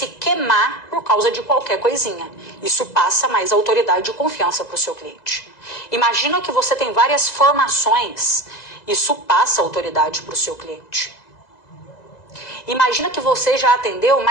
queimar por causa de qualquer coisinha. Isso passa mais autoridade e confiança para o seu cliente. Imagina que você tem várias formações. Isso passa autoridade para o seu cliente. Imagina que você já atendeu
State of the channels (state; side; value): late; right; 2.0 ms